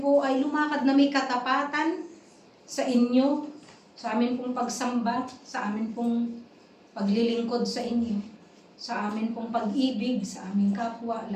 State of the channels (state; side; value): identical; both; correlation 1.00